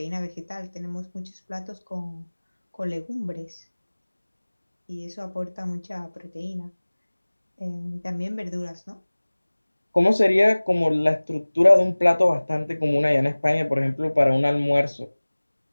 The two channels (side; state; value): both; inverted; correlation -1.00